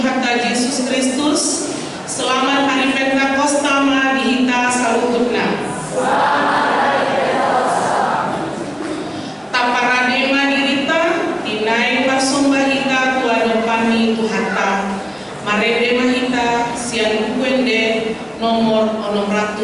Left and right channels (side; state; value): both; identical; correlation 1.00